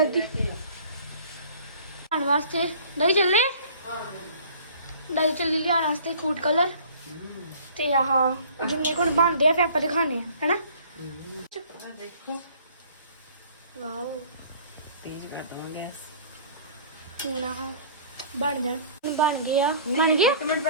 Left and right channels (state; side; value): inverted; both; correlation -0.50